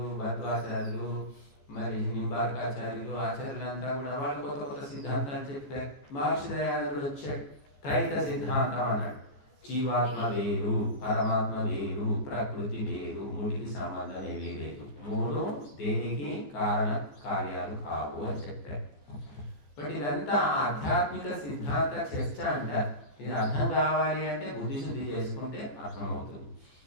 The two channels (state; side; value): late; right; 14 ms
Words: భద్వాచార్యులు, మరి నింబార్కాచార్యులు, ఆచార్యులంతా కూడా వాళ్ళు కొత్త కొత్త సిద్ధాంతాలు చెప్పారు. మహర్షి దయానందుడు వచ్చాడు, త్రైత సిద్ధాంతం అన్నాడు. జీవాత్మ వేరు, పరమాత్మ వేరు, ప్రకృతి వేరు, మూడికి సంబంధం ఏమీ లేదు, మూడు దేనికి కారణ కార్యాలు కావు అని చెప్పారు. బట్ ఇదంతా ఆధ్యాత్మిక సిద్ధాంత చర్చ అంటారు. ఇది అర్థం కావాలి అంటే బుద్ధిశుద్ధి చేసుకుంటే అర్థమవుతుంది.